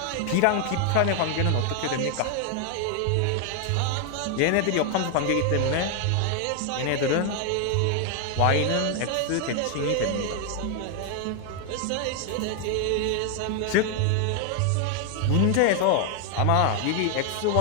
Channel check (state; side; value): different; both; correlation 0.00